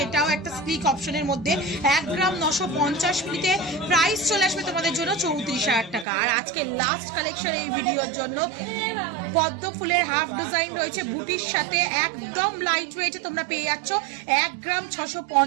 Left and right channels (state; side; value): drops out; left; at 6.1 s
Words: এটাও একটা স্লিক অপশনের মধ্যে। 1 গ্রাম 950 মিলিতে প্রাইস চলে আসবে তোমাদের জন্য 34,000 টাকা। আর আজকে লাস্ট কালেকশন এই ভিডিওর জন্য পদ্ম ফুলের হাফ ডিজাইন রয়েছে বুটির সাথে, একদম লাইট ওয়েটে তোমরা পেয়ে যাচ্ছ 1 গ্রাম